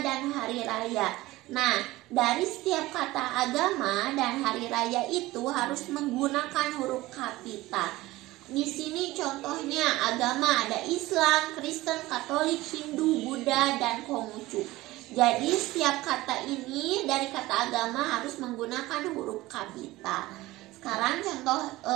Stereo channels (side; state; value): left; quieter; 18.4 dB